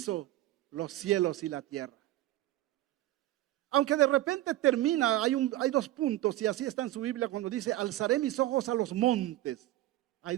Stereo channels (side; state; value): left; quieter; 15.6 dB